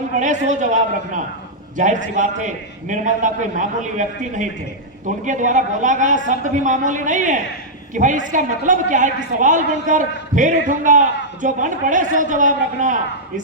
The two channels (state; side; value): normal; both; correlation -0.08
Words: पड़े सो जवाब रखना। जाहिर सी बात है, निर्मलदा कोई मामूली व्यक्ति नहीं थे, तो उनके द्वारा बोला गया शब्द भी मामूली नहीं है कि भाई इसका मतलब क्या है कि सवाल बनकर फिर उठूंगा, जो बन पड़े सो जवाब रखना।